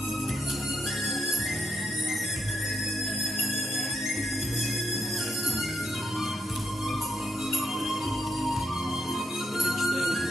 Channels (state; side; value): normal; both; correlation 0.80